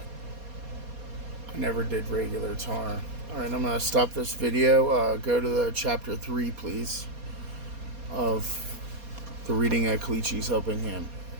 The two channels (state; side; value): late; left; 4.2 ms